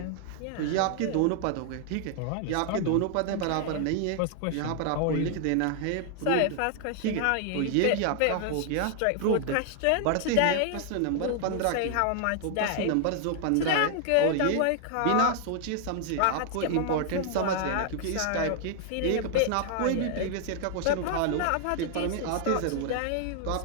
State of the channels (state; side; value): different; both; correlation 0.00